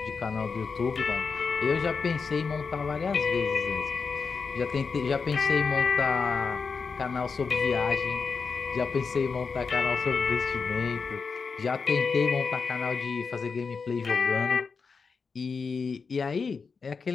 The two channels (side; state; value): right; quieter; 5.1 dB